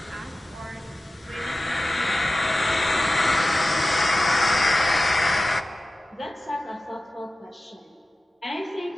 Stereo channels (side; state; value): both; normal; correlation 0.95